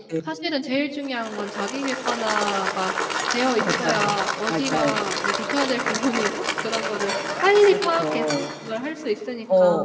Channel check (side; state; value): both; identical; correlation 1.00